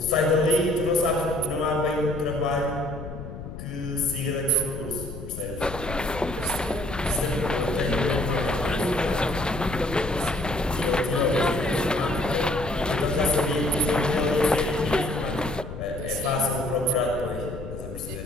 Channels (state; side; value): noise; left; rumble, 10 dB below the sound